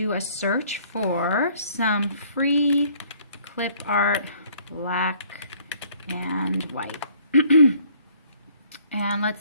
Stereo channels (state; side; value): inverted; both; correlation -0.60